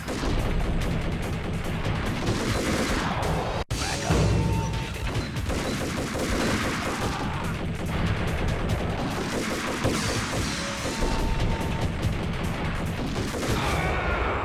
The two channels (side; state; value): both; identical; correlation 1.00